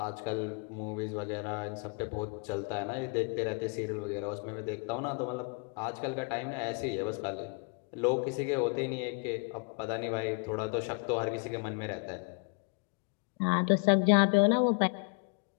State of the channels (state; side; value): quieter; right; 36.1 dB